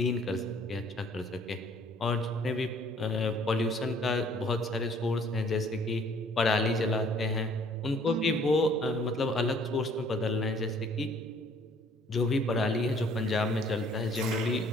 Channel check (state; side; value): normal; both; correlation 0.58